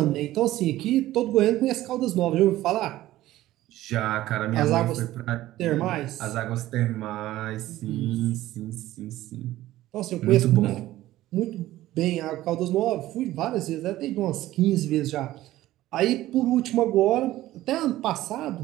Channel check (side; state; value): left; quieter; 15.3 dB